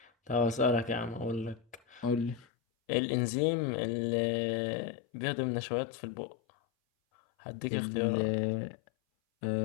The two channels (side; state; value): right; drops out; at 2.5 s